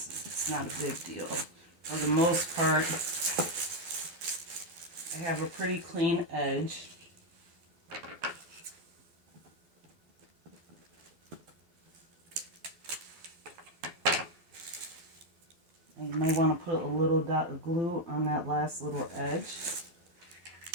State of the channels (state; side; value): late; left; 12 ms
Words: It's not a big deal. For the most part, I have a pretty clean edge. And you may want to put a little dot of glue on that last little edge.